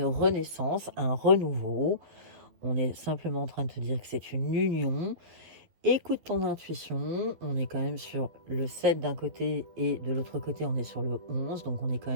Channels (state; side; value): late; left; 12 ms